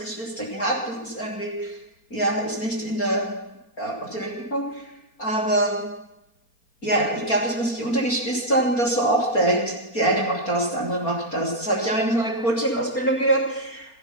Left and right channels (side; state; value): right; late; 4.3 ms